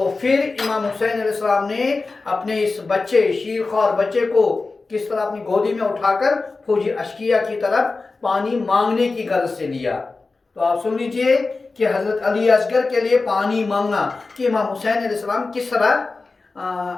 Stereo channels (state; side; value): quieter; right; 3.8 dB